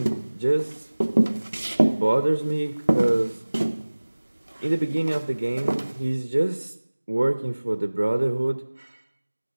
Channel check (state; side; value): inverted; both; correlation -1.00